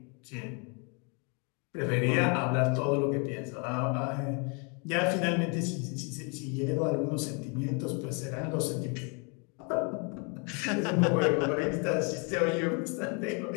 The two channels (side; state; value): right; quieter; 35.4 dB